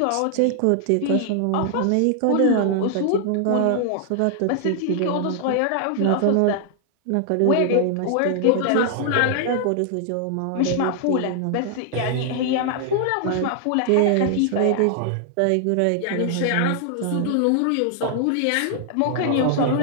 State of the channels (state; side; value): different; both; correlation 0.00